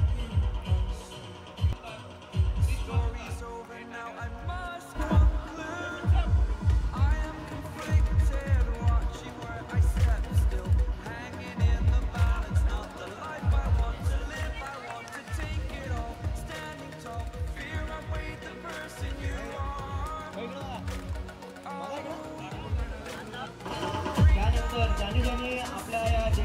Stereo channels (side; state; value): both; identical; correlation 1.00